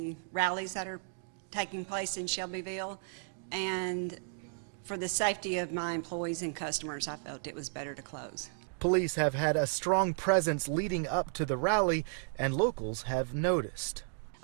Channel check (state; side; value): silent; left; digital silence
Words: rallies that are taking place in Shelbyville, and For the safety of my employees and customers, I felt it was better to close. Police have had a strong presence leading up to the rally, and locals have noticed.